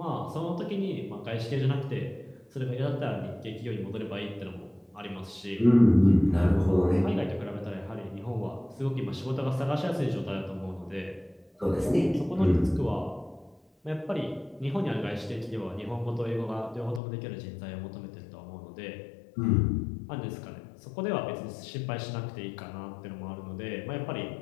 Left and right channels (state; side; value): drops out; right; at 17.0 s